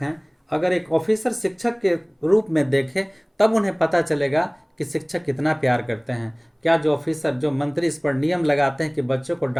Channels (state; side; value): identical; both; correlation 1.00